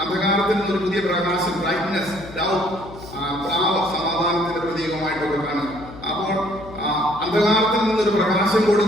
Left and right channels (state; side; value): noise; left; hum, 16 dB below the sound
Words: അന്ധകാരത്തിൽ നിന്നൊരു പുതിയ പ്രകാശം, ബ്രൈറ്റ്നെസ്, ലവ്, സമാധാനത്തിന്റെ പ്രതീകമായിട്ടൊക്കെ കാണുന്നു. അപ്പോൾ അന്ധകാരത്തിൽ നിന്നൊരു പ്രകാശം